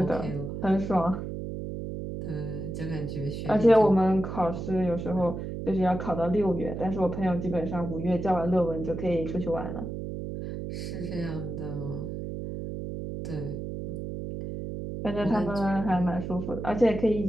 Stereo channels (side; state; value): right; noise; hum, 6 dB below the sound